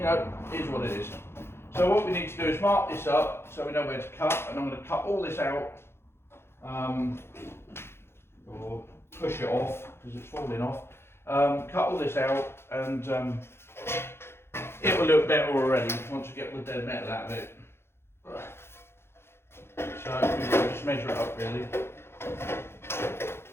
know, it is what it is. So what we need to do is mark this up so we know where to cut, and I'm going to cut all this out, or push it off because it's falling off. Cut all this out, and it will look better already once we get the dead metal out of it. So we'll just measure it up really.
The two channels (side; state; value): right; late; 0.12 ms